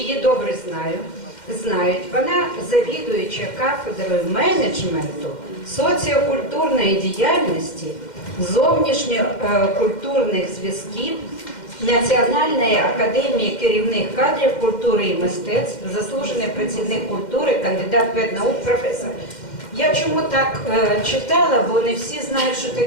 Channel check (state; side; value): late; right; 2.1 ms